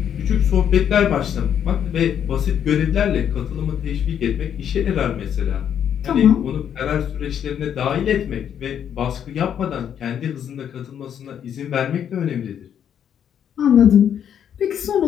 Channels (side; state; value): right; quieter; 9.0 dB